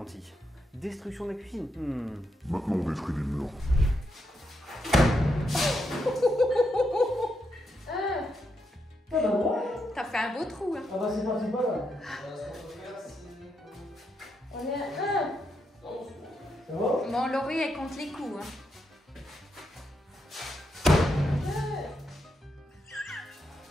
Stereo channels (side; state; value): both; normal; correlation 0.82